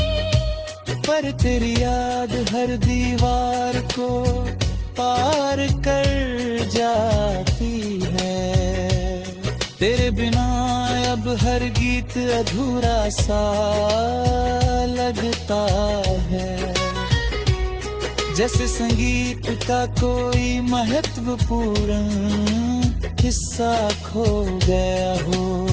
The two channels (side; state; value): both; identical; correlation 1.00